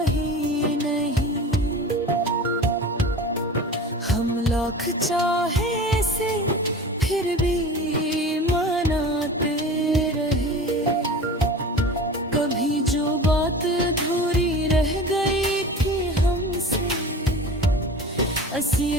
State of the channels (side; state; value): both; normal; correlation 0.36